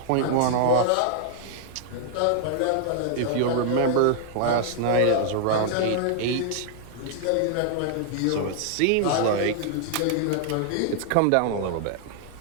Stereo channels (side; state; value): both; different; correlation 0.00